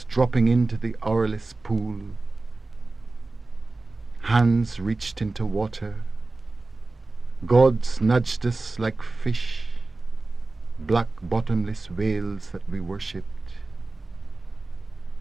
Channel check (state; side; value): quieter; left; 3.3 dB